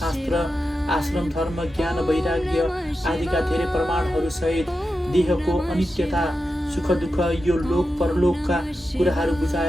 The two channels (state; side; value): normal; both; correlation 0.90